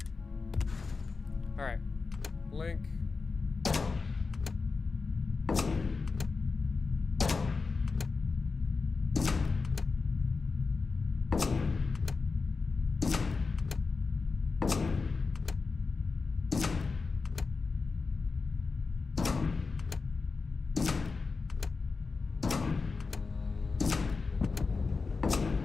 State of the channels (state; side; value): quieter; right; 4.4 dB